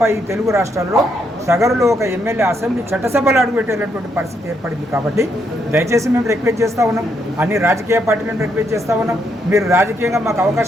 ఈ తెలుగు రాష్ట్రాల్లో సగరులో ఒక ఎమ్మెల్యే అసెంబ్లీ చట్టసభలు అడుగుపెట్టేటటువంటి పరిస్థితి ఏర్పడింది. కాబట్టి దయచేసి మేము రిక్వెస్ట్ చేస్తూ ఉన్నాం, అన్ని రాజకీయ పార్టీలను రిక్వెస్ట్ చేస్తూ ఉన్నాం, మీరు రాజకీయంగా మాకు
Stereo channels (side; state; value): both; normal; correlation 0.77